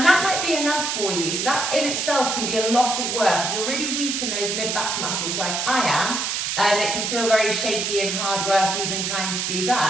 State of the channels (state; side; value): noise; right; hiss, 1 dB below the sound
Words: that might be enough for you. So that in itself can be a lot of work. If you're really weak in those mid-back muscles like I am, it can feel very shaky and hard work even trying to do